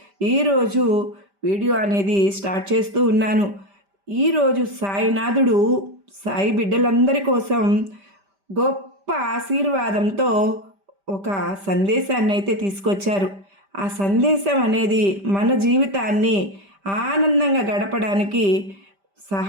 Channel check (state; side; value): late; left; 5.1 ms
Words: ఈరోజు వీడియో అనేది స్టార్ట్ చేస్తూ ఉన్నాను. ఈరోజు సాయినాథుడు సాయి బిడ్డలందరి కోసం గొప్ప ఆశీర్వాదంతో ఒక సందేశాన్ని అయితే తీసుకొచ్చారు. ఆ సందేశం అనేది మన జీవితాన్ని ఆనందంగా గడపడానికి